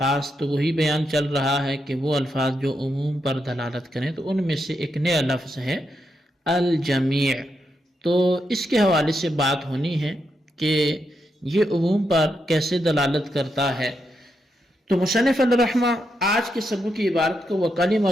تو وہی بیان چل رہا ہے کہ وہ الفاظ جو عموم پر دلالت کریں، تو ان میں سے ایک نیا لفظ ہے الجمیع۔ تو اس کے حوالے سے بات ہونی ہے کہ یہ عموم پر کیسے دلالت کرتا ہے۔ تو مصنف الرحمہ آج کے سبق کی عبارت کو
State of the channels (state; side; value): normal; both; correlation 0.83